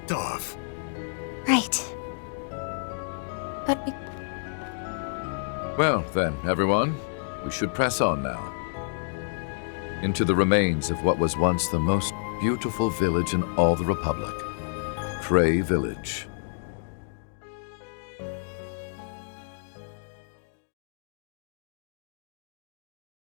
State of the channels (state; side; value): silent; right; digital silence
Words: off. Right. But Well, then, everyone, we should press on now. Into the remains of what was once the most beautiful village in all the Republic. Cray Village.